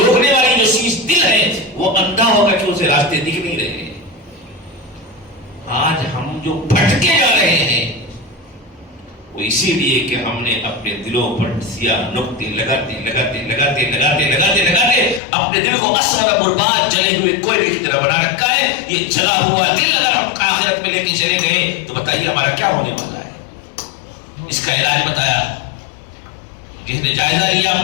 والی جو چیز دل ہے وہ اندھا ہوگا کہ اسے راستے دکھ نہیں رہے. آج ہم جو بھٹکے جا رہے ہیں وہ اسی لیے کہ ہم نے اپنے دلوں پر سیاہ نقطے لگاتے لگاتے لگاتے لگاتے لگاتے لگاتے اپنے دل کو اسود برباد جلے ہوئے کوئلے کی طرح بنا رکھا ہے. یہ جلا ہوا دل اگر ہم آخرت میں لے کے چلے گئے تو بتائیے ہمارا کیا ہونے والا ہے؟ اس کا علاج بتایا. جس نے جائزہ لیا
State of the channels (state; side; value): drops out; right; at 15.2 s